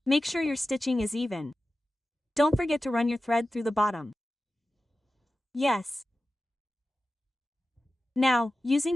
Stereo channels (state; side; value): normal; both; correlation 0.94